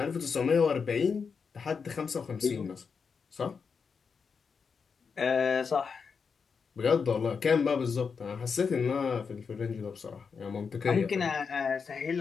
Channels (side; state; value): right; quieter; 5.7 dB